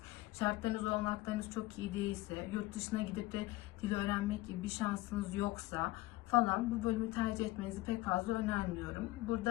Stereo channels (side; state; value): right; quieter; 18.7 dB